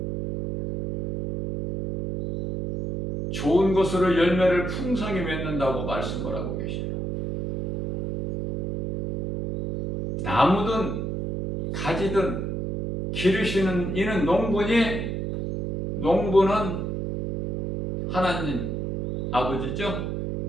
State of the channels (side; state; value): right; noise; hum, 3 dB below the sound